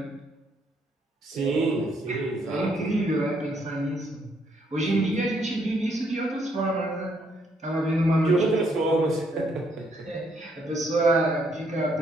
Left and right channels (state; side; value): normal; both; correlation 0.71